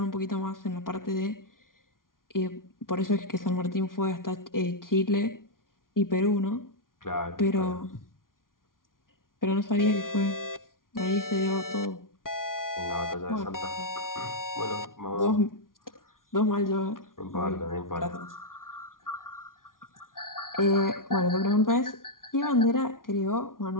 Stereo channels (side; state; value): right; late; 0.90 ms